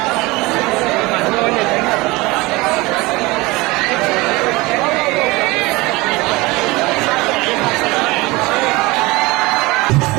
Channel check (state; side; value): quieter; left; 22.5 dB